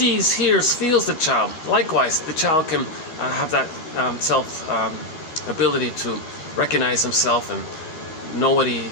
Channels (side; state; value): right; late; 12 ms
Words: hears, feels the child, likewise, the child can have that ability to recognize himself and know what he